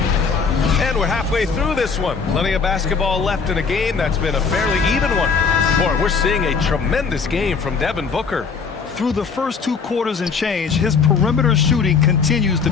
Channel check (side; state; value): right; quieter; 5.4 dB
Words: And we're halfway through this one. Plenty of basketball left in a game that's been a fairly even one. Boy, we're seeing a tremendous game from Devin Booker. Through the first 2 quarters and change, his perimeter shooting continues to